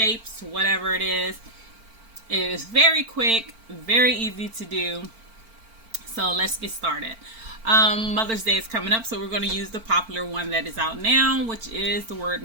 whatever it is. It is very quick, very easy to do. So let's get started. Mother's Day is coming up, so we're going to use the popular one that is out now, which is the word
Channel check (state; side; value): late; left; 4.4 ms